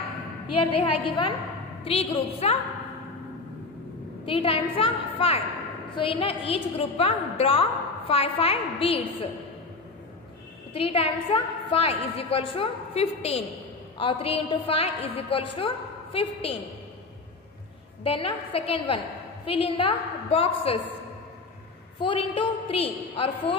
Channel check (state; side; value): quieter; right; 3.7 dB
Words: Here they have given 3 groups. 3 times 5. So in each group draw 5 beads. 3 times 5 is equals to 15, or 3 into 5 is equals to 15. Then second one, fill in the boxes. 4 into 3, or